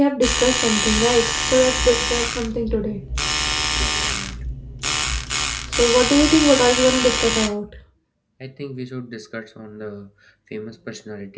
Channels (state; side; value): identical; both; correlation 1.00